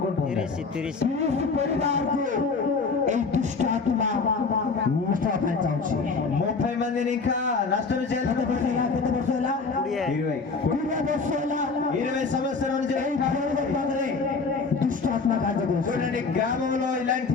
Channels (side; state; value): right; quieter; 4.5 dB